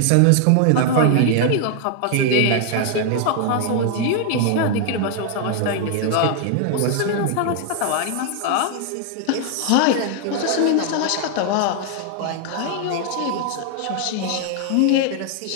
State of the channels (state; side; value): different; both; correlation 0.00